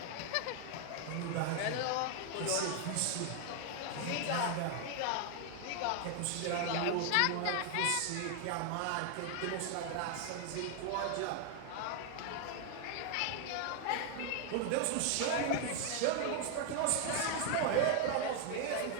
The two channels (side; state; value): both; different; correlation 0.00